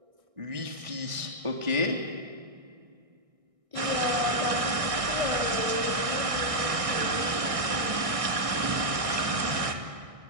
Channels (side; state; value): left; late; 1.6 ms